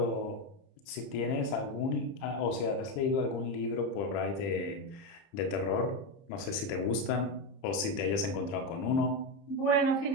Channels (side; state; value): right; late; 30 ms